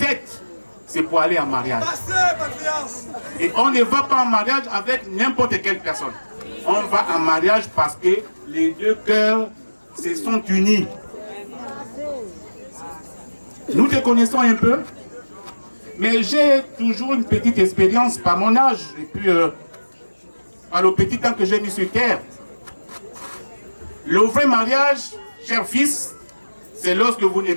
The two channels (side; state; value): both; inverted; correlation -1.00